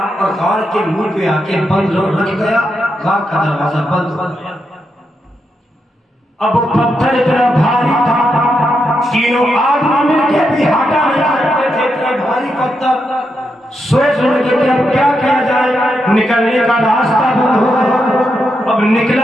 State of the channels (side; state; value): both; normal; correlation 0.83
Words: اور غار کے منہ پہ آ کے بند رکھ گیا. غار کا دروازہ بند ہو گیا. اب وہ پتھر اتنا بھاری تھا، 3 آدمی مل کے بھی ہٹا نہیں سکتے تھے. اتنا بھاری پتھر سوچ رہے تھے کہ اب کیا کیا جائے. نکلنے کا راستہ بند ہو گیا. اب